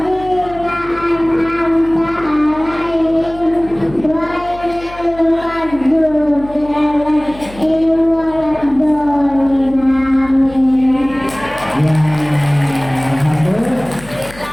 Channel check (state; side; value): noise; left; hum, 18 dB below the sound